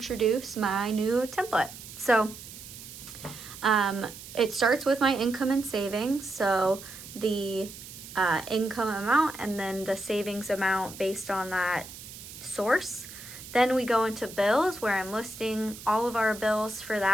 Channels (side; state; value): right; noise; hiss, 14 dB below the sound